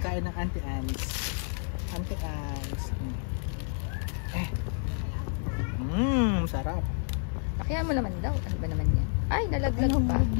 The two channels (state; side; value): silent; right; 58 dB below the other